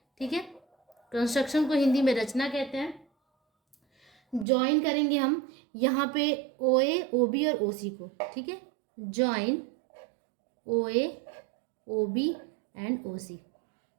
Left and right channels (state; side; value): drops out; left; at 4.5 s